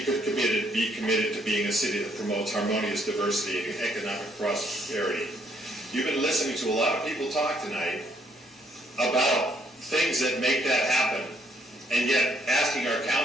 could be committed to being a city that promotes harmonious diversity and economic prosperity. You've been listening to a lot of people talk tonight about things that make that happen, and yet asking our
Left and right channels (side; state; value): both; normal; correlation 0.69